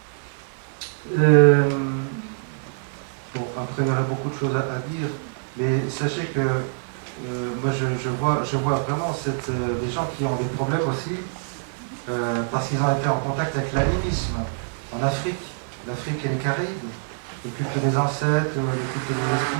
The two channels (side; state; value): left; silent; digital silence